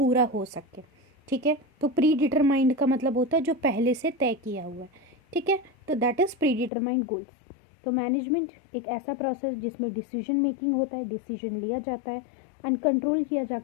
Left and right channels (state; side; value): drops out; right; at 6.7 s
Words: हो सके, ठीक है। तो प्री डिटरमाइंड का मतलब होता है जो पहले से तय किया हुआ है, ठीक है। तो that is pre determined goals. तो मैनेजमेंट एक ऐसा प्रोसेस जिसमें डिसीजन मेकिंग होता है, डिसीजन लिया जाता है एंड कंट्रोल किया